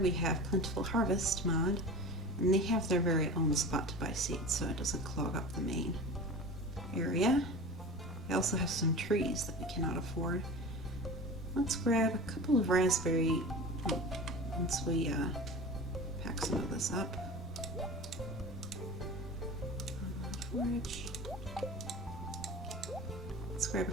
have Plentiful Harvest mod. And they have their very own spot to buy seeds, so it doesn't clog up the main area. I also have some trees that we cannot afford. Let's grab a couple of raspberry once we pack some of this up. Forage. Let's grab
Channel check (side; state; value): both; normal; correlation 0.34